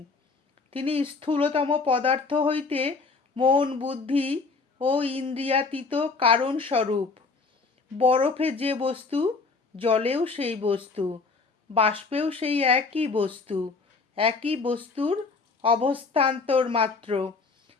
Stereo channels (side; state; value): right; quieter; 4.2 dB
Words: তিনি স্থূলতম পদার্থ হইতে মন, বুদ্ধি ও ইন্দ্রিয়াতীত কারণ স্বরূপ। বরফে যে বস্তু, জলেও সেই বস্তু, বাষ্পেও সেই একই বস্তু, একই বস্তুর অবস্থান্তর মাত্র।